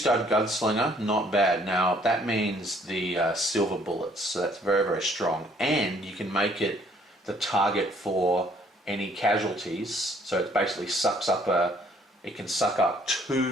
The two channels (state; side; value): normal; both; correlation 0.62